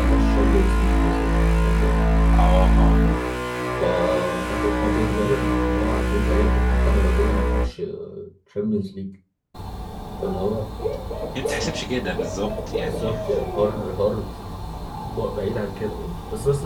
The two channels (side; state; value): both; identical; correlation 1.00